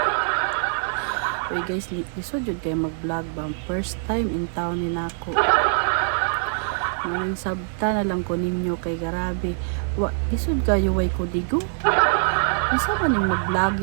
Uy guys, lisod yun kayo mag-vlog ba? First time in town ni nako. Ngayon sabta na lang ko ninyo kay garabi. Lisod kayo way ko digo? Isa ba ning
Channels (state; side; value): silent; left; digital silence